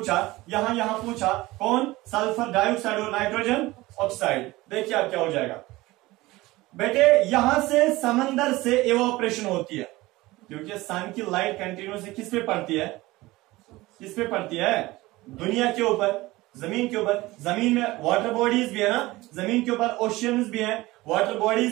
यहां पूछा कौन, सल्फर डाइऑक्साइड और नाइट्रोजन ऑक्साइड। देखिए अब क्या हो जाएगा बेटे, यहां से समंदर से इवोपरेशन होती है, क्योंकि सन की लाइट कंटिन्यूसली किस पे पड़ती है, किस पे पड़ती है, दुनिया के ऊपर, जमीन के ऊपर। जमीन में वाटर बॉडीज भी है ना, जमीन के ऊपर ओशियंस भी हैं, वाटर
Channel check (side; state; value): left; quieter; 19.5 dB